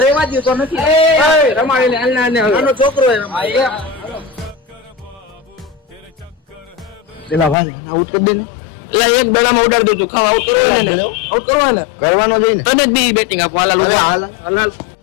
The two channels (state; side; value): drops out; right; at 7.6 s